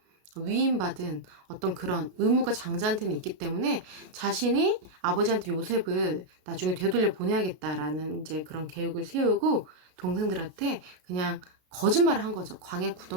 위임받은 어떤 그런 의무가 장자한테는 있기 때문에 자신이 아버지한테 요셉을 나중에 되돌려 보내야겠다라는 이제 그런 계획을 세우고 동생들한테 그냥 거짓말을 한 거죠. 광야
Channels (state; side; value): late; left; 33 ms